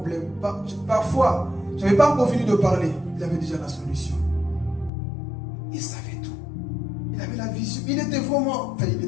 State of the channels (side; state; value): right; drops out; at 4.9 s